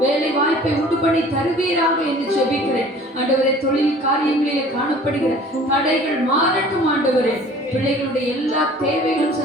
வேலை வாய்ப்பை உண்டு பண்ணி தருவீராக என்று ஜெபிக்கிறேன். ஆண்டவரே தொழில் காரியங்களிலே காணப்படுகிற தடைகள் மாறட்டும். ஆண்டவரே பிள்ளைகளுடைய எல்லா தேவைகளும்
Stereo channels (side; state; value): both; normal; correlation 0.49